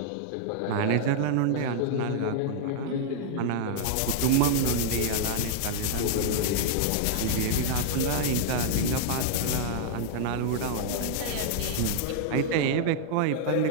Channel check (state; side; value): different; both; correlation -0.01